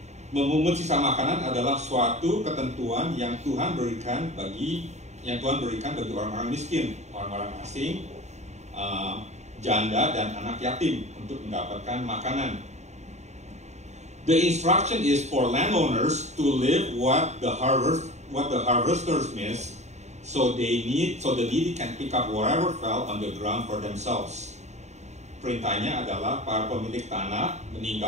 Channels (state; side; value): late; left; 0.33 ms